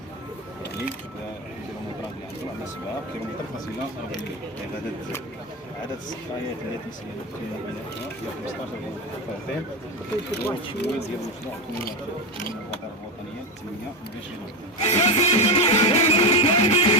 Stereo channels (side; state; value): both; normal; correlation 0.16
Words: يعني الكيلومترات اللي عندنا عندنا 7 كيلومتر فاصلة 40 يعني عدد السقايات اللي تيسير في بنائها هي 15 فرد والتمويل ديال المشروع من الوزارة الوطنية 28